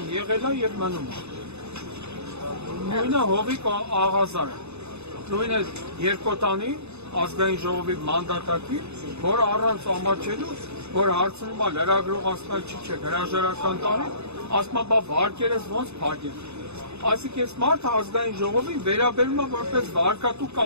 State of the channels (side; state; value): left; late; 0.80 ms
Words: եղել է եւ մնում է։ Նույնը Հովիկ Աղազարը, նույնը Երկոտանի ազգային ժողովի մանդատակի, որ առանց ամաչելու, որ հարցնում է լրագրող ասում է չի չէ, հրաժարական տարի, ասում է բա վարկերս ոնց փակեն։ Այսինքն այս մարդը ազգային ժողովին վերաբերում է որպես վարկատու